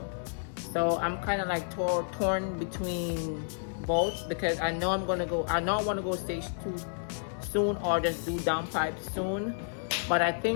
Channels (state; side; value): silent; right; 57 dB below the other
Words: So I'm kind of like torn between both, because I know I want to go stage 2 soon, or just do downpipe soon. But I